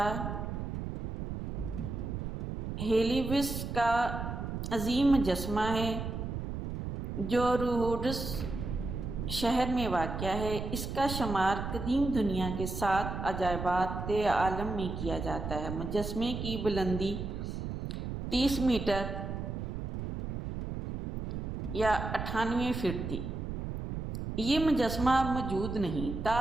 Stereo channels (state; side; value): noise; right; rumble, 5 dB below the sound